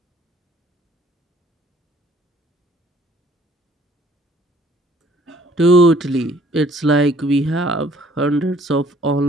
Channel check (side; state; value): both; normal; correlation 0.59